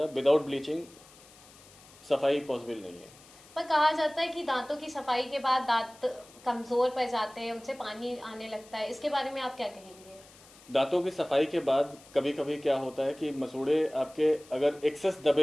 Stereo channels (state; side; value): noise; left; hiss, 23 dB below the sound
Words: विदाउट ब्लीचिंग सफाई पॉसिबल नहीं है। पर कहा जाता है कि दांतों की सफाई के बाद दांत कमजोर पड़ जाते हैं, उनसे पानी आने लगता है, इसके बारे में आप क्या कहेंगे? दांतों की सफाई के बाद कभी कभी क्या होता है कि मसूड़े आपके अगर एक्सेस